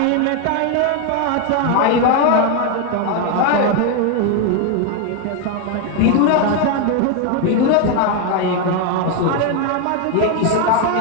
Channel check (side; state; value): both; different; correlation 0.01